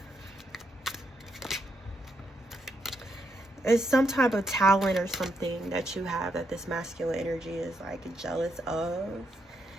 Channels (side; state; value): both; normal; correlation 0.80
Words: It's some type of talent or something that you have that this masculine energy is like jealous of.